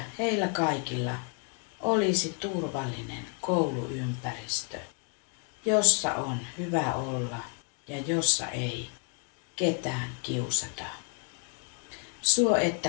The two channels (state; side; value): quieter; right; 38.4 dB